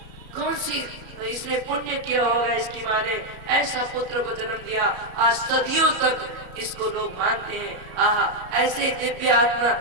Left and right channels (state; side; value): late; left; 34 ms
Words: कौन सी इसने पुण्य किया होगा, इसकी माँ ने ऐसा पुत्र को जन्म दिया। आज सदियों तक इसको लोग मानते हैं। आहा ऐसे दिव्य आत्मा